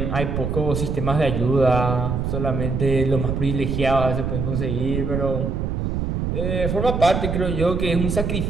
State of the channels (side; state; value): right; noise; rumble, 1 dB below the sound